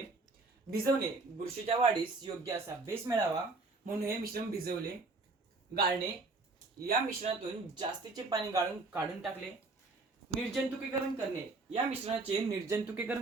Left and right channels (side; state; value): left; quieter; 3.6 dB